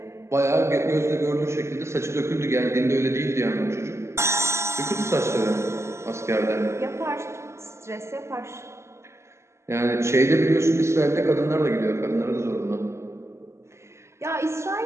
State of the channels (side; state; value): left; late; 0.13 ms